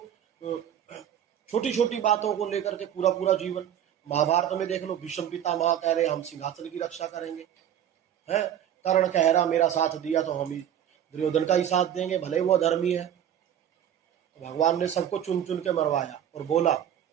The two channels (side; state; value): left; quieter; 10.2 dB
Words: छोटी छोटी बातों को लेकर के पूरा पूरा जीवन, महाभारत में देख लो, भीष्म पितामह कह रहे हम सिंहासन की रक्षा करेंगे, है, कर्ण कह रहा मेरा साथ दिया तो हम ही दुर्योधन का ही साथ देंगे, भले वो अधर्मी है। तो भगवान ने सबको चुन चुन के मरवाया और बोला